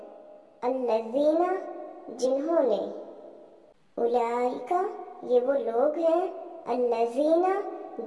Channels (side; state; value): both; identical; correlation 1.00